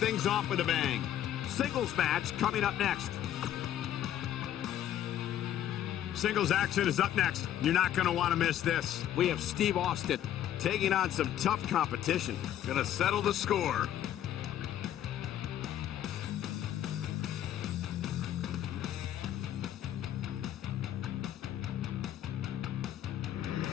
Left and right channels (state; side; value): quieter; right; 11.4 dB